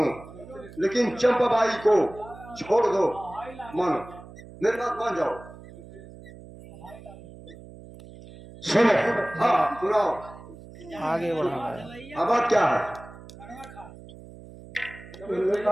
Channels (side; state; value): right; noise; hum, 18 dB below the sound